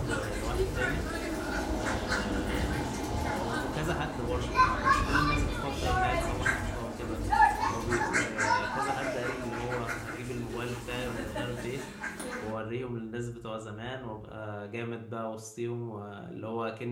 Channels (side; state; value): both; identical; correlation 1.00